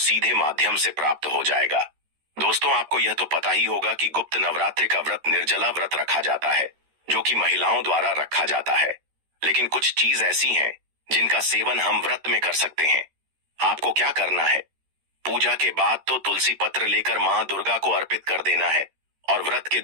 माध्यम से प्राप्त हो जाएगा। दोस्तों, आपको यह तो पता ही होगा कि गुप्त नवरात्रि का व्रत निर्जला व्रत रखा जाता है, जो कि महिलाओं द्वारा रखा जाता है। लेकिन कुछ चीज ऐसी हैं जिनका सेवन हम व्रत में कर सकते हैं। आपको क्या करना है? पूजा के बाद तो तुलसी पत्र लेकर मां दुर्गा को अर्पित कर देना है और व्रत के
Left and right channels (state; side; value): late; left; 13 ms